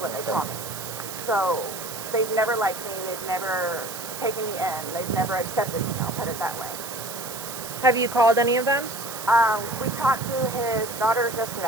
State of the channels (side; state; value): right; noise; hiss, 9 dB below the sound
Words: they call me. So they've never liked me. They've never taken me in. They've never accepted me. I'll put it that way. Have you called any of them? We talked to his daughters